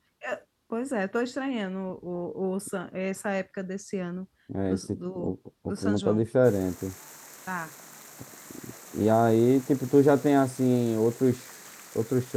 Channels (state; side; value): identical; both; correlation 1.00